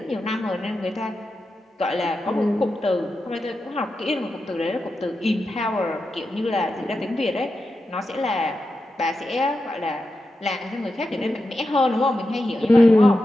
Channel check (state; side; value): normal; both; correlation 0.89